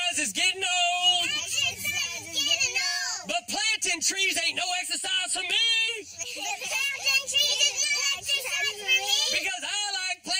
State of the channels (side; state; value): both; identical; correlation 1.00